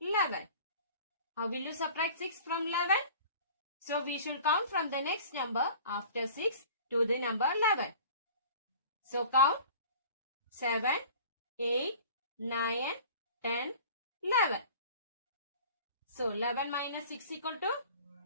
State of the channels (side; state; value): both; inverted; correlation -0.44